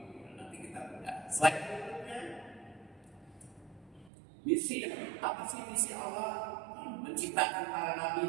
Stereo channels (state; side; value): drops out; left; at 4.1 s